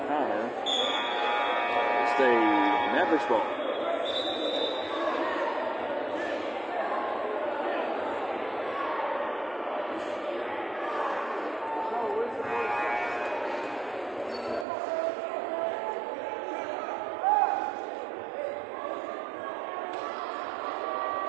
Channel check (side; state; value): left; drops out; at 14.7 s